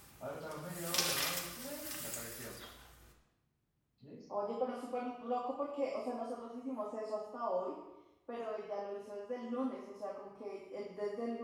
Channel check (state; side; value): identical; both; correlation 1.00